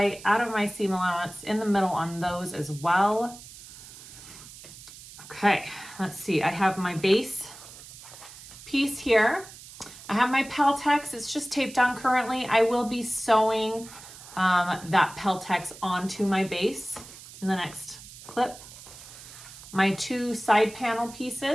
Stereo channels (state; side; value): noise; right; hiss, 17 dB below the sound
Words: out of my seam allowance in the middle on those as well. Okay, let's see. I have my base piece here. I have my Peltex. It's just taped on currently. I will be sewing that Peltex onto my base in the next clip. My 2 side panel